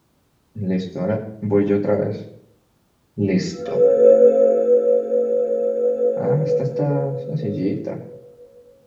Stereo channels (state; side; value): identical; both; correlation 1.00